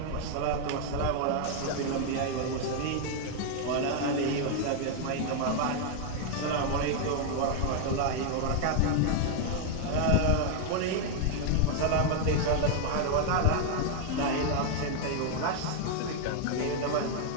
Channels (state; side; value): different; both; correlation 0.00